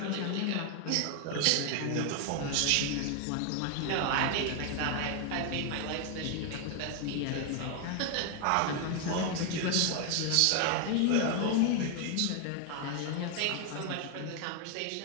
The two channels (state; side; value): different; both; correlation 0.01